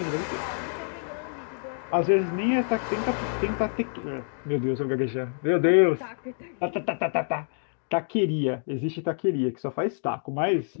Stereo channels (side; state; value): right; silent; 60 dB below the other